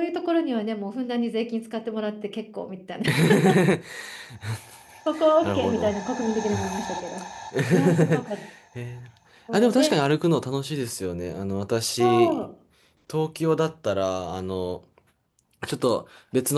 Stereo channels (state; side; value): identical; both; correlation 1.00